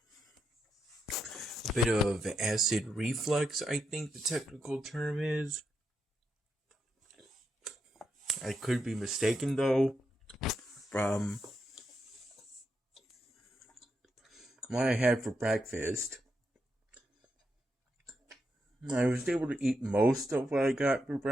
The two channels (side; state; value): both; normal; correlation 0.83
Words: a bit of acid reflux, I think the technical term is. I could be mistaken though from what I had for breakfast. I was able to eat most of what I got for